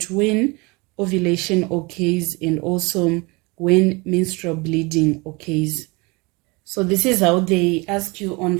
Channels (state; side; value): quieter; left; 26.4 dB